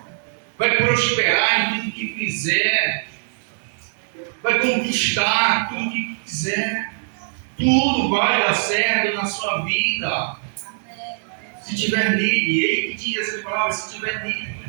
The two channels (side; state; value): left; silent; digital silence